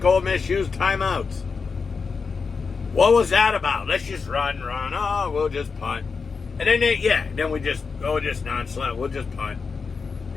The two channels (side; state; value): right; quieter; 5.1 dB